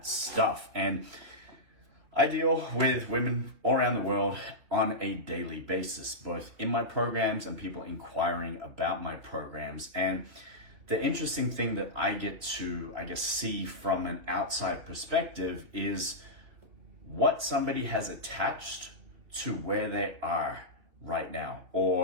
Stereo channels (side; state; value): left; late; 3.0 ms